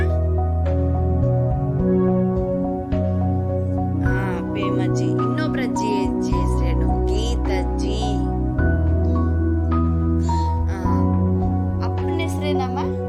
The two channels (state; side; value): identical; both; correlation 1.00